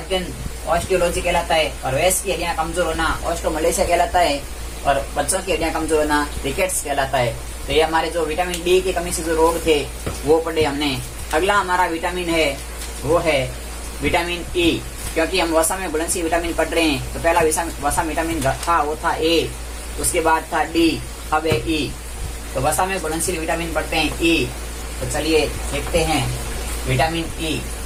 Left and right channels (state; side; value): identical; both; correlation 1.00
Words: ऑस्टियोलॉजी कहलाता है, और वयस्क की हड्डियां कमजोर होना ऑस्टोमलेशिया कहलाता है, और बच्चों की हड्डियां कमजोर होना रिकेट्स कहलाता है। तो ये हमारे जो विटामिन डी की कमी से जो रोग थे वो पढ़े हमने। अगला हमारा विटामिन है वो है विटामिन ई, क्योंकि हम वसा में घुलनशील विटामिन पढ़ रहे हैं। तो पहला वसा विटामिन था वो था ए, उसके बाद था डी, अब है ई। तो वसा में घुलनशील विटामिन पढ़ते हैं ई। तो चलिए देखते हैं विटामिन ई।